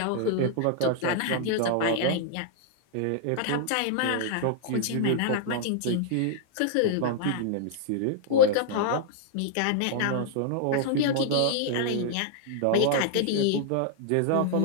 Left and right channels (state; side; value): different; both; correlation -0.01